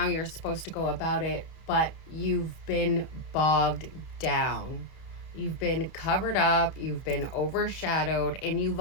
you're supposed to go about it, but you've been bogged down. You've been covered up, you've been overshadowed, and you've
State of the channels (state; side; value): late; right; 31 ms